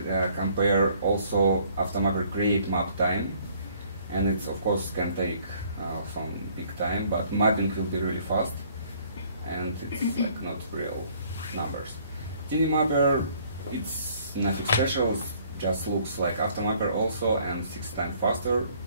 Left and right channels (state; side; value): inverted; both; correlation -0.60